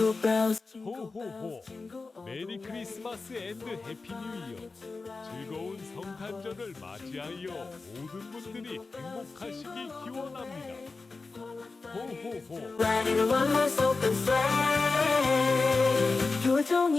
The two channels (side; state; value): right; quieter; 3.9 dB